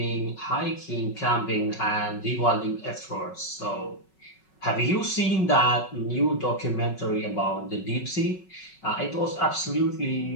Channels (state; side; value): late; right; 5.4 ms